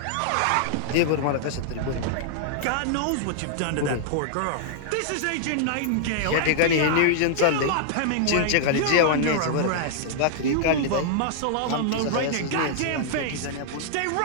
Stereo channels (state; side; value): different; both; correlation -0.01